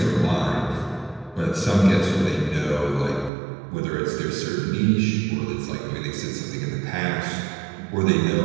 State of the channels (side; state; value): left; drops out; at 3.3 s